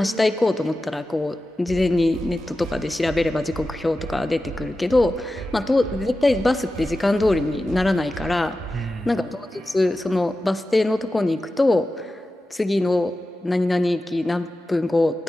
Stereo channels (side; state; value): both; normal; correlation 0.93